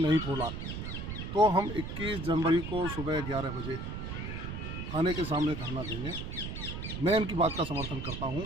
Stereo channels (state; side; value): noise; right; rumble, 6 dB below the sound